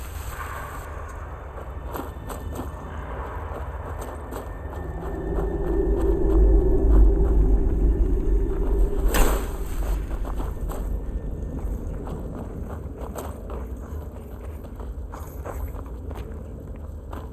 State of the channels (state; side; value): identical; both; correlation 1.00